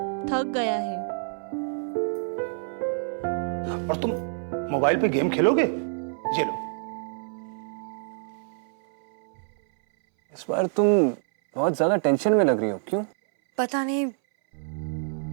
थक गया है। और तुम मोबाइल पे गेम खेलोगे? ये लो। इस बार तुम बहुत ज्यादा टेंशन में लग रही हो, क्यों? पता नहीं,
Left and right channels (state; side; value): silent; left; 60 dB below the other